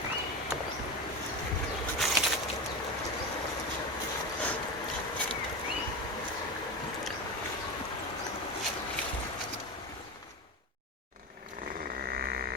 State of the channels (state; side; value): normal; both; correlation 0.20